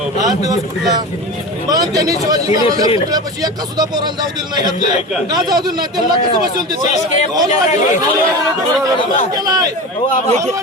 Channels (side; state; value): both; normal; correlation 0.28